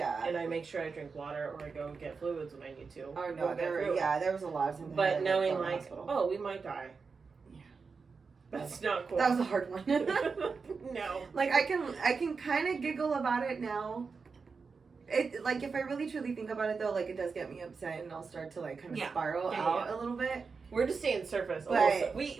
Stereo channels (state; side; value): quieter; left; 5.0 dB